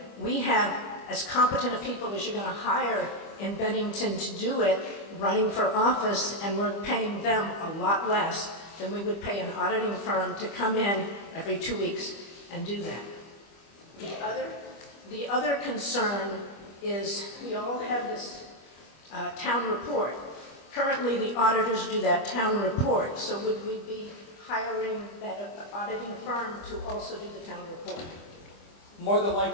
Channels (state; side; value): late; right; 25 ms